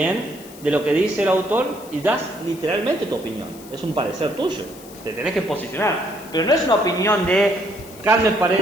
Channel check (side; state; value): left; noise; hiss, 20 dB below the sound